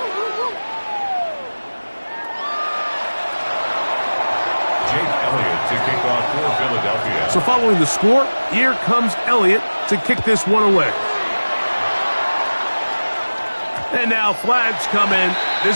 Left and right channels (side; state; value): both; inverted; correlation -1.00